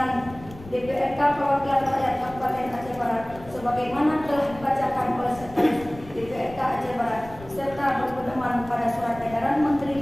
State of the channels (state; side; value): noise; left; rumble, 18 dB below the sound